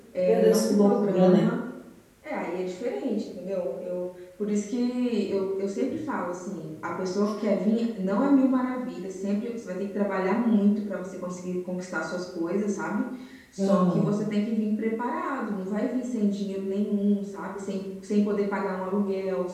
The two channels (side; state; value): both; identical; correlation 1.00